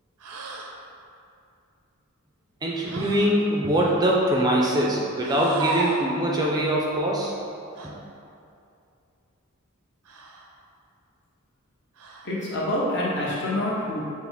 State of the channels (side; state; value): both; normal; correlation 0.34